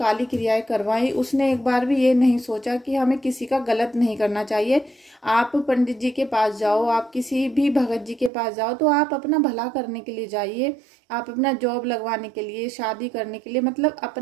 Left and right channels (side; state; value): left; drops out; at 8.3 s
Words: क्रियाएं करवाई, उसने एक बार भी ये नहीं सोचा कि हमें किसी का गलत नहीं करना चाहिए। आप पंडित जी के पास जाओ, आप किसी भी भगत जी के पास जाओ, तो आप अपना भला करने के लिए जाइए। आप अपना जॉब लगवाने के लिए, शादी करने के लिए, मतलब